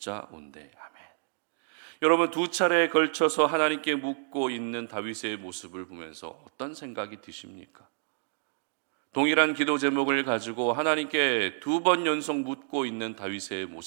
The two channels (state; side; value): silent; left; digital silence